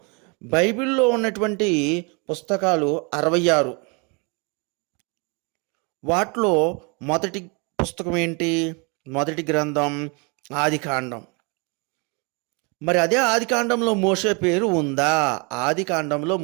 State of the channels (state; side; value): quieter; left; 31.8 dB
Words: బైబిల్లో ఉన్నటువంటి పుస్తకాలు 66. వాటిలో మొదటి పుస్తకం ఏంటి? మొదటి గ్రంథం ఆదికాండం. మరి అదే ఆదికాండంలో మోషే పేరు ఉందా? ఆదికాండంలో